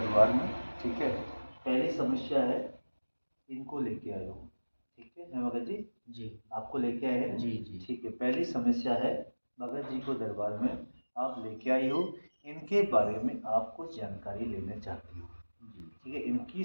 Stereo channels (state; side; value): inverted; both; correlation -1.00